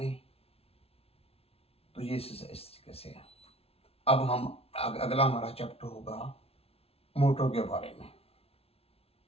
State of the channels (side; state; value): right; late; 0.29 ms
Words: तो ये इस तरीके से है। अब हम अगला हमारा चैप्टर होगा मोटर के बारे में,